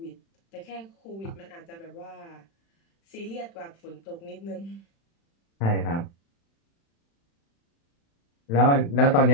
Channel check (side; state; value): right; late; 36 ms